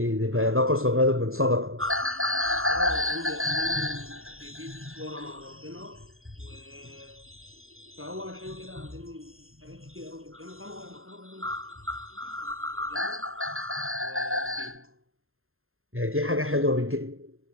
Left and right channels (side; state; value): left; late; 0.61 ms